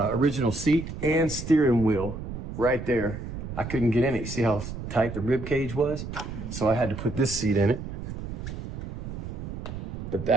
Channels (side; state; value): right; noise; rumble, 8 dB below the sound